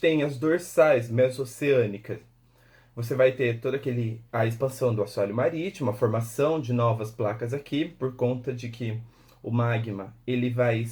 as dorsais mesoceânicas, você vai ter toda a expansão do assoalho marítimo, a formação de novas placas aqui, por conta de que o magma ele vai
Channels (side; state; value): both; identical; correlation 1.00